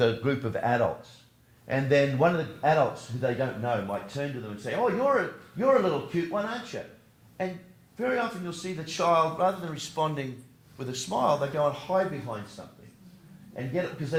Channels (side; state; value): both; identical; correlation 1.00